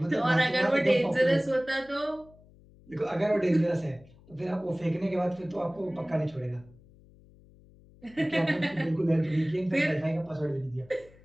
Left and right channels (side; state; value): left; noise; hum, 25 dB below the sound